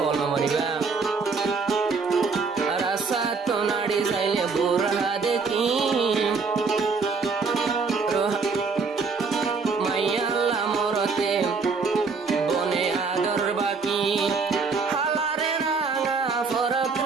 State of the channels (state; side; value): quieter; left; 4.8 dB